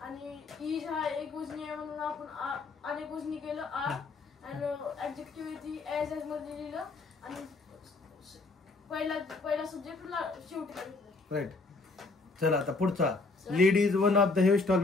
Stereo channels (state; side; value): quieter; right; 3.7 dB